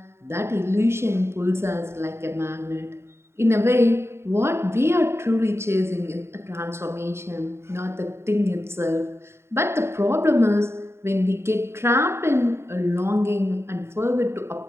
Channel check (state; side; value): late; left; 0.12 ms